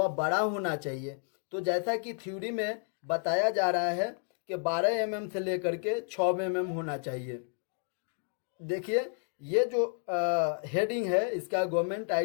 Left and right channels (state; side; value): silent; right; 57 dB below the other